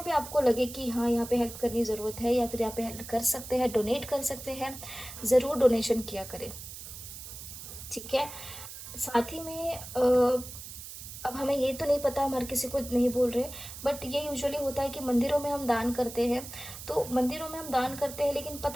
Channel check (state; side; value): noise; right; hiss, 12 dB below the sound